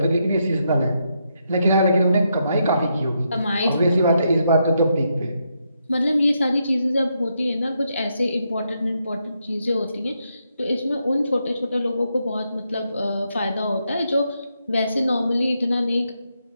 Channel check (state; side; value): inverted; both; correlation -0.81